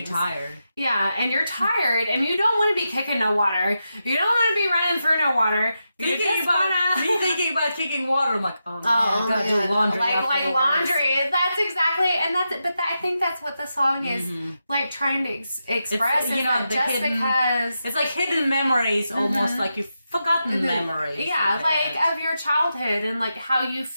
tired. Yeah, and you're tired and you don't want to be kicking no water. You don't want to be running through no water. Me thinking about kicking water, I'm like, oh man, I gotta do laundry. Like laundry. That's exactly, and I think that's what the song is like trying to express. It's, because it's like hidden memories, almost like you've forgotten memories. Yeah, like of your childhood and like how you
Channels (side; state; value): both; inverted; correlation -0.88